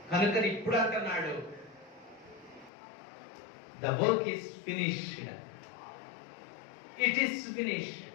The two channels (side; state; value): right; drops out; at 2.7 s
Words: కనుక ఇప్పుడు అంటున్నాడు, the work is finished, it is finished,